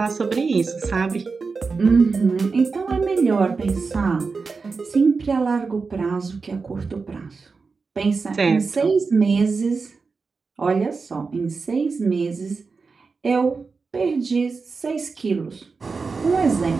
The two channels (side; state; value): left; quieter; 4.6 dB